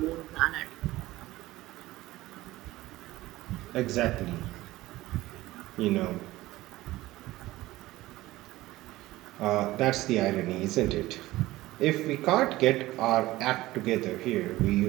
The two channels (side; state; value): left; quieter; 17.5 dB